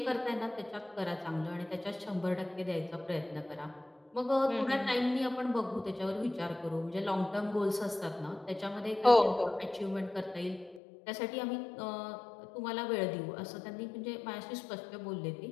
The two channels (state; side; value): drops out; right; at 10.8 s